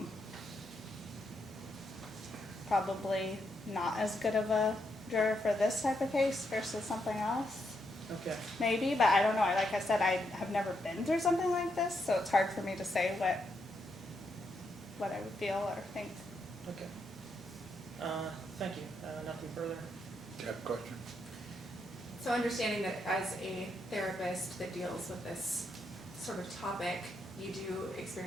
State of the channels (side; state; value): both; normal; correlation 0.80